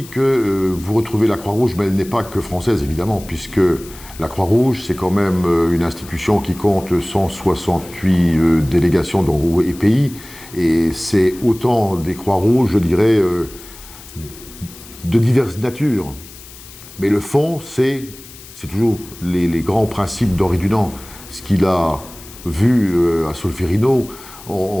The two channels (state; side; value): noise; left; hiss, 18 dB below the sound